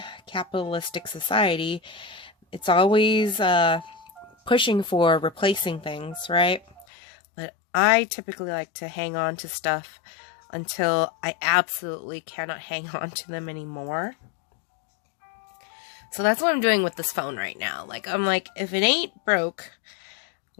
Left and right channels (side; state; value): right; drops out; at 6.9 s